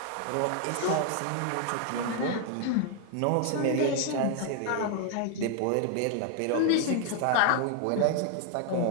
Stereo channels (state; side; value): different; both; correlation 0.00